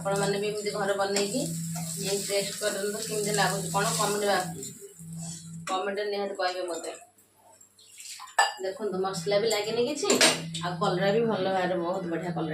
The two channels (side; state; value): both; identical; correlation 1.00